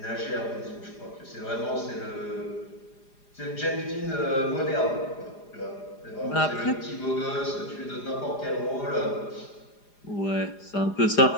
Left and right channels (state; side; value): late; right; 4.9 ms